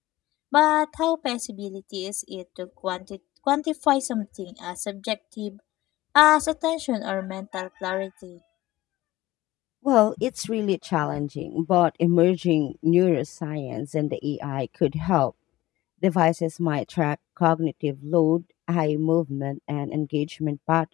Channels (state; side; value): quieter; right; 16.9 dB